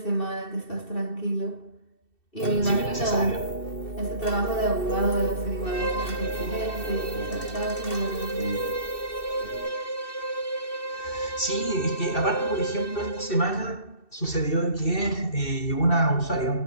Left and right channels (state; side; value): late; right; 2.7 ms